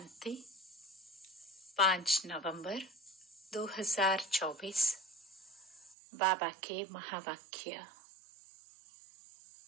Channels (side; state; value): left; drops out; at 6.0 s